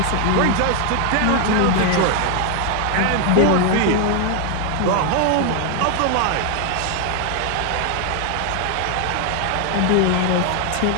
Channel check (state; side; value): different; both; correlation 0.01